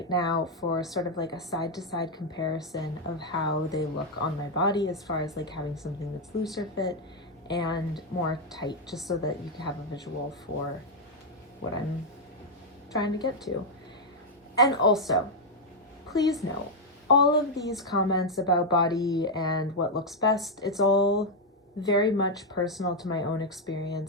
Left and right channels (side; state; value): both; normal; correlation 0.00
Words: now, for sort of like a side-to-side comparison of how they look on my body as far as like having something that's looser fit and more tight, just so that you can have a visual for what I'm trying to get to. And also, please note, all of these comments about body and what looks best, it's all very much personal to my own